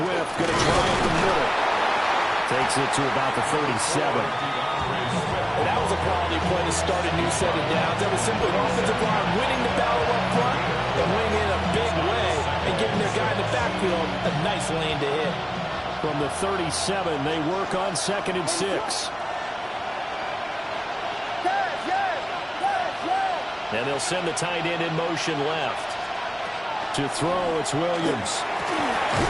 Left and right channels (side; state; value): both; identical; correlation 1.00